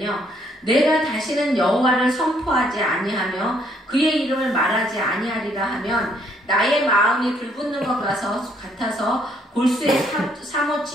내가 다시는 여호와를 선포하지 아니하며 그의 이름을 말하지 아니하리라 하면 나의 마음이 불붙는 것 같아서 골수에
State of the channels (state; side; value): normal; both; correlation 0.68